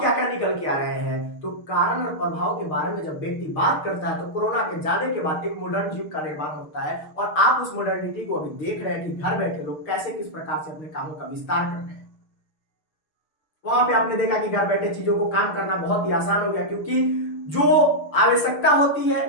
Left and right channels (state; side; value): late; right; 6.5 ms